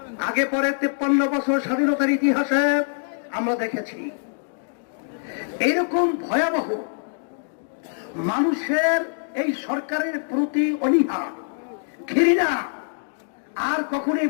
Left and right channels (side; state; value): right; silent; digital silence